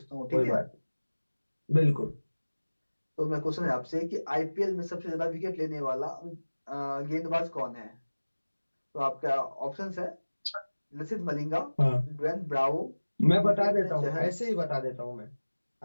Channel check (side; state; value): both; inverted; correlation -1.00